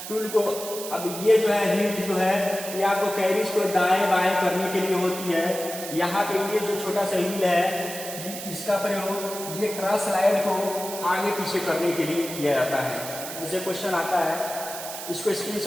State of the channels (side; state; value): right; noise; hiss, 9 dB below the sound